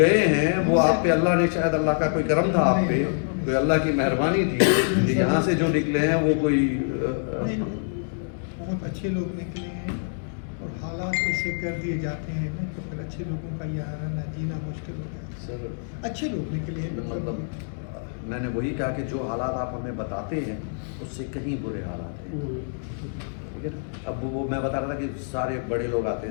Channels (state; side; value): silent; right; digital silence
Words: ہیں وہ آپ پہ اللہ نے شاید اللہ کا کوئی کرم تھا آپ پہ، کوئی اللہ کی مہربانی تھی کہ یہاں سے جو نکلے ہیں وہ کوئی بہت اچھے لوگ نکلے ہیں، اور حالات ایسے کر دیے جاتے ہیں نا تو پھر اچھے لوگوں کا یہ رہنا جینا مشکل ہو جاتا ہے۔ سر اچھے لوگ نکلے ہیں، مطلب میں نے وہی کہا کہ جو حالات آپ ہمیں بتاتے ہیں اس سے کہیں برے حالات ہیں، ٹھیک ہے نا۔ اب وہ میں بتا رہا تھا کہ سارے بڑے لوگ آتے